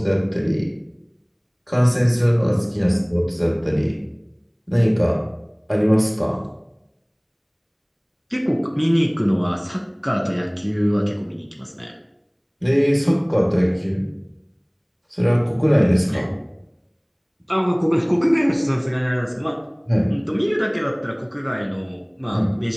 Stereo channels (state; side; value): identical; both; correlation 1.00